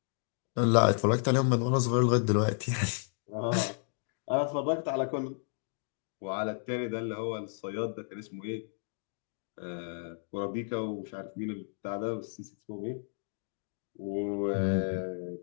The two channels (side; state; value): right; silent; digital silence